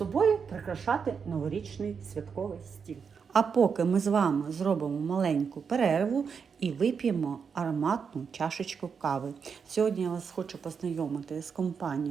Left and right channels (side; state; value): left; quieter; 6.2 dB